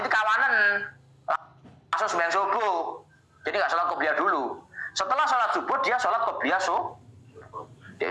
kawanan. Langsung sembahyang subuh. Jadi enggak salat qobliyah dulu. Setelah salat subuh dia salat qobliyah subuh. Dia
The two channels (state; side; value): identical; both; correlation 1.00